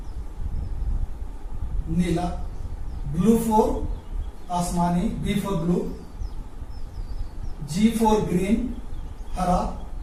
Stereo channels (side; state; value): both; identical; correlation 1.00